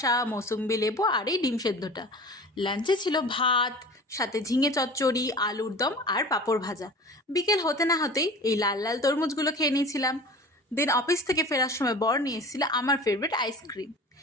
মৌসুম্বি লেবু আর এই ডিম সেদ্ধটা। লাঞ্চে ছিল ভাত, সাথে ঝিঙে চচ্চড়ি, আলুর দম আর পাঁপড় ভাজা। বিকেল হতে না হতেই এই লাল লাল তরমুজগুলো খেয়ে নিয়েছিলাম। দেন অফিস থেকে ফেরার সময় বর নিয়ে এসেছিল আমার ফেভারিট আইসক্রিম।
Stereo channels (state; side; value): normal; both; correlation 0.39